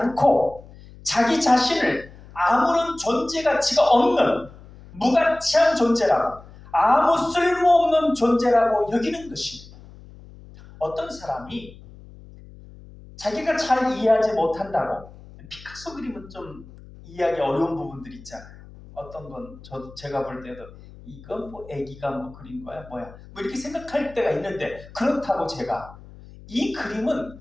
자기 자신을 아무런 존재 가치가 없는 무가치한 존재라고, 아무 쓸모없는 존재라고 여기는 것입니다. 어떤 사람이 자기가 잘 이해하지 못한다고. 피카소 그림은 좀 이해하기 어려운 부분들이 있잖아요. 어떤 건 제가 볼 때도 이건 뭐 애기가 뭐 그린 거야 뭐야 뭐 이렇게 생각할 때가 있는데, 그렇다고 제가 이 그림은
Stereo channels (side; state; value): left; noise; hum, 20 dB below the sound